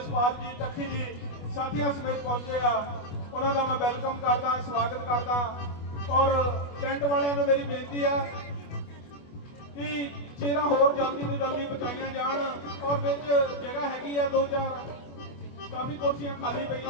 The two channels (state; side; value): late; right; 25 ms